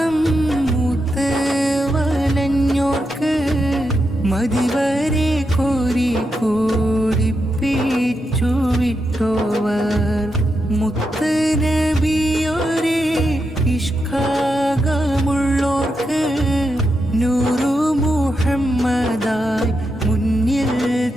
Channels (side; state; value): both; normal; correlation 0.85